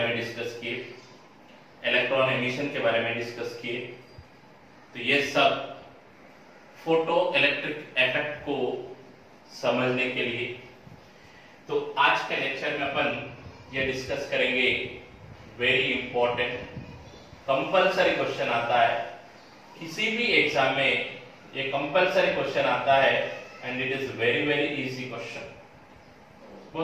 में डिस्कस किए, इलेक्ट्रॉन एमिशन के बारे में डिस्कस किए. तो ये सब फोटो इलेक्ट्रिक इफेक्ट को समझने के लिए. तो आज के लेक्चर में अपन ये डिस्कस करेंगे वेरी इंपॉर्टेंट कंपलसरी क्वेश्चन आता है किसी भी एग्जाम में. ये कंपलसरी क्वेश्चन आता है and it is very very easy question.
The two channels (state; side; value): identical; both; correlation 1.00